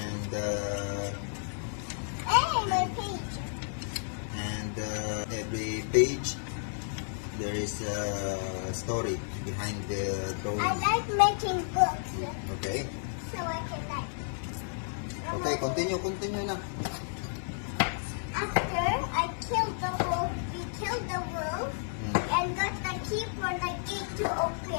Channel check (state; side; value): silent; right; 57 dB below the other